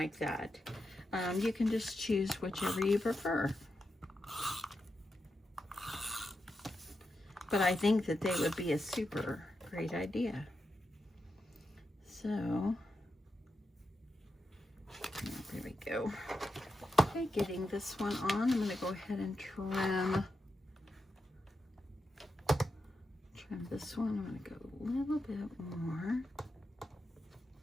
that. You can just choose whichever you prefer. But I think that they would be a super great idea. So, there we go. Okay, getting this one on, I'm going to go ahead and trim this one. I'm going to go a little bit more.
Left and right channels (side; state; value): both; normal; correlation 0.87